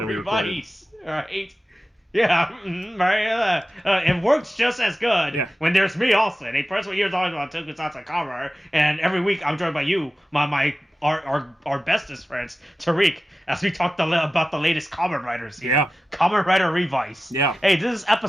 Revice, right? Yeah, right. It works just as good when there's me, Austin, a person here talking about tokusatsu cover, and every week I'm joined by you, our bestest friends, Tariq, as we talk about the latest Kamen Riders. Yeah. Kamen Rider Revice. Yeah. Hey, this is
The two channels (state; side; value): normal; both; correlation 0.94